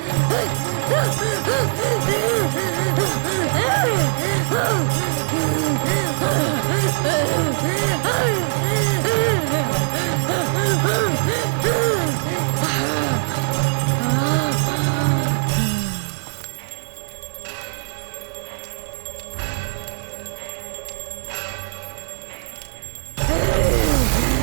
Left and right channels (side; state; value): left; silent; digital silence